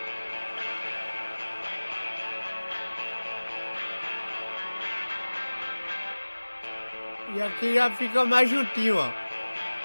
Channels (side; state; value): both; inverted; correlation -1.00